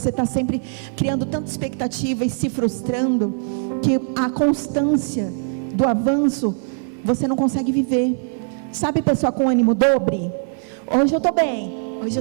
está sempre criando tanta expectativa e se frustrando, que a constância do avanço você não consegue viver. Sabe, pessoa com ânimo dobre? Hoje eu estou bem, hoje eu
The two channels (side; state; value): left; silent; 65 dB below the other